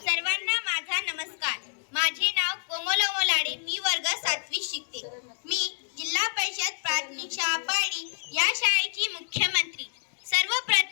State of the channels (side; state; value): right; silent; digital silence